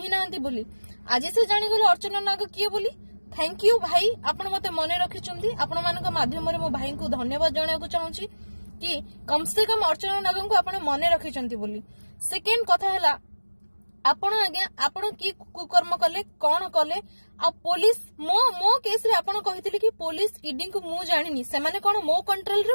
नांती बोली आज से जानि गेल अर्चना नाग किए बोली थैंक यू भाई आपण मते मने रखिचंती आपण मानक माध्यम रे मो भाई को धन्यवाद जणा को चाहूची कि कम से कम अर्चना नाग को आपण मने रखिचंती बोली सेकेंड कथा हैला आपण आज्ञा आपण की कुकर्म कले कोन कले आ पुलिस मो केस रे आपण कहितले कि पुलिस ईडी को मु जानिनी से माने कोन मो कंट्रोल रे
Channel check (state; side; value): inverted; both; correlation -1.00